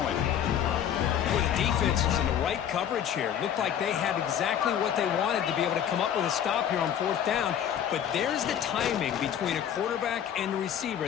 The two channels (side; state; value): right; quieter; 9.5 dB